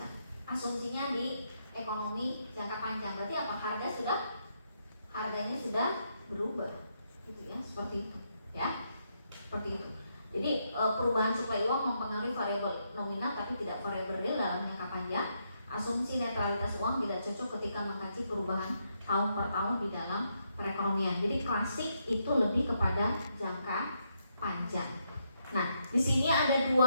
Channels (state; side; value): inverted; both; correlation -0.79